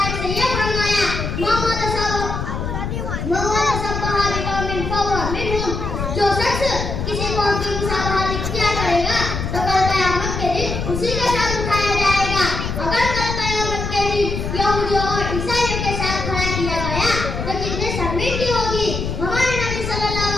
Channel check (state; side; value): noise; left; rumble, 4 dB below the sound